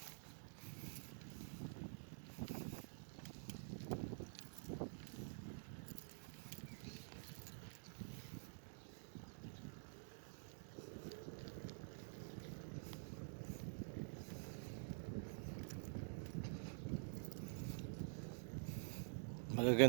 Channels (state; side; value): silent; left; digital silence